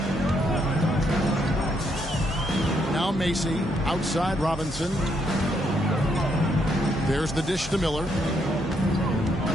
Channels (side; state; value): both; normal; correlation 0.75